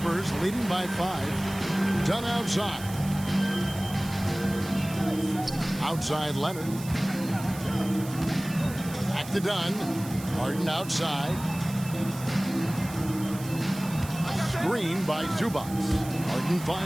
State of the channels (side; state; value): right; noise; hiss, 15 dB below the sound